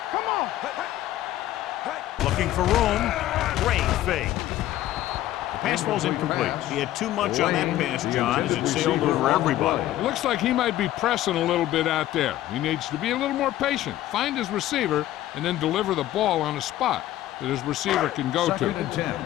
Come on. Looking for room. Great fake. The pass falls incomplete. He had too much on that pass, John, as it sailed over everybody. It looks like he might be pressing a little bit out there. He needs to be a little more patient, find his receiver, and then deliver the ball on a spot that his receiver can go to. Second and 10.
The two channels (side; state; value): right; quieter; 14.1 dB